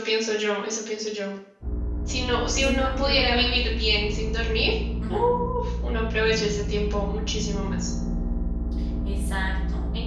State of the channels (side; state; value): both; identical; correlation 1.00